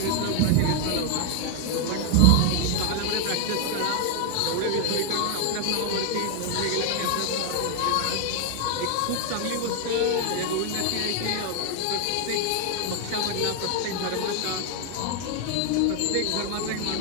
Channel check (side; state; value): both; different; correlation 0.00